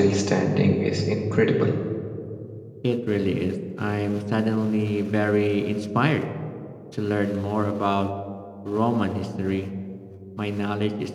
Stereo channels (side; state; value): both; identical; correlation 1.00